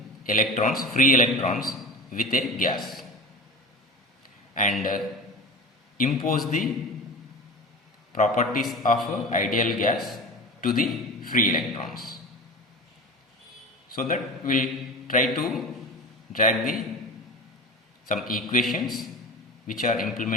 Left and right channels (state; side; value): normal; both; correlation 0.31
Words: electrons, free electrons, with a gas and impose the properties of ideal gas to the free electrons. So that we'll try to drag some equations which are